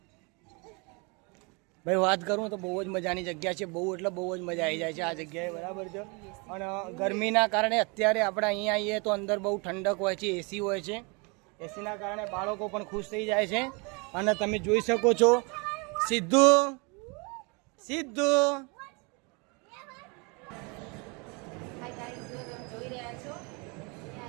ભાઈ વાત કરું તો બહુ જ મજાની જગ્યા છે. બહુ એટલે બહુ જ મજા આવી જાય છે આ જગ્યાએ, બરાબર છે. અને ગરમીના કારણે અત્યારે આપણે અહીંયા આવીએ તો અંદર બહુ ઠંડક હોય છે, એસી હોય છે. એસીના કારણે બાળકો પણ ખુશ થઈ જાય છે. અને તમે જોઈ શકો છો સિદ્ધુ હાય ગાઈસ, જો તમે જોઈ રહ્યા છો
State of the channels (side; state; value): left; quieter; 30.9 dB